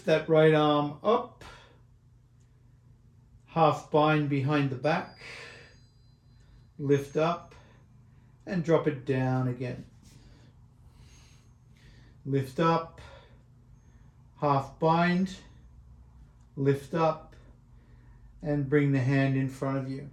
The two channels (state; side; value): identical; both; correlation 1.00